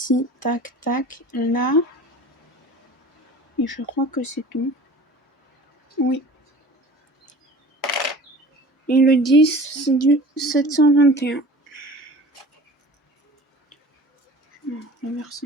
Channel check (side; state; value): both; normal; correlation 0.42